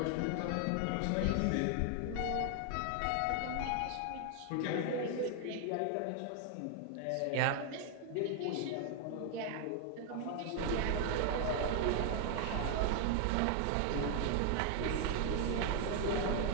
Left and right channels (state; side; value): different; both; correlation 0.00